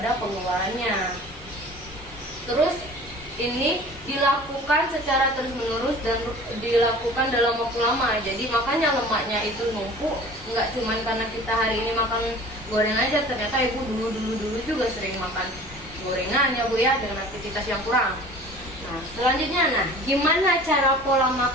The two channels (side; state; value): both; normal; correlation 0.44